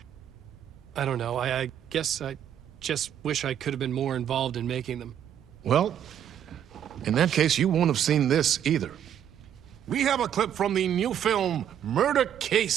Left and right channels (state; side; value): quieter; left; 9.7 dB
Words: I don't know. I guess I just wish I could have been more involved in making them. Well, in that case, you won't have seen this either. We have a clip from the new film, Murder